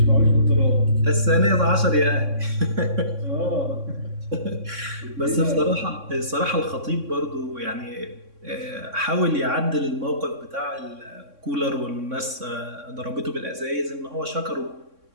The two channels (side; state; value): left; late; 3.6 ms